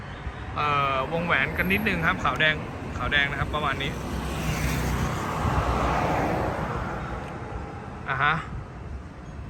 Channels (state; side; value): identical; both; correlation 1.00